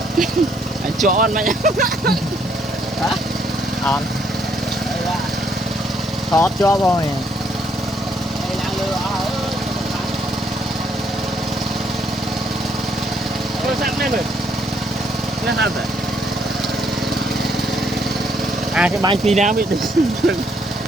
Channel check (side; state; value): both; normal; correlation 0.70